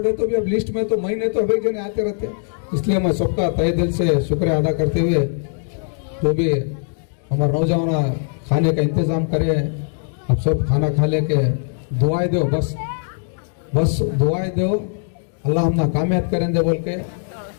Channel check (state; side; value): silent; right; digital silence